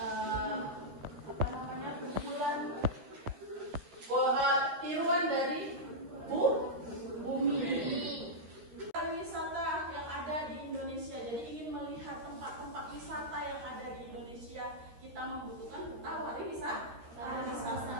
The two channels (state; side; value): late; left; 13 ms